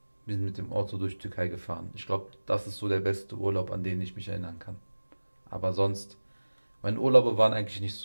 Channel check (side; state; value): both; inverted; correlation -1.00